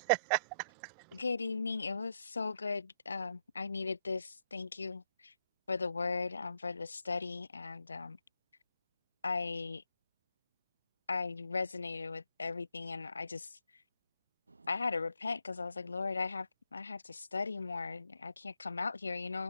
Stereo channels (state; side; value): inverted; both; correlation -0.77